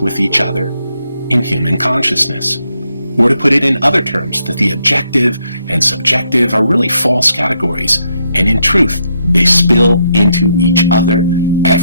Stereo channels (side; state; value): both; inverted; correlation -0.77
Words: each other in human consciousness. Or to put it in other terms, that the objective and subjective are really false categories, and in truth, they spill into each other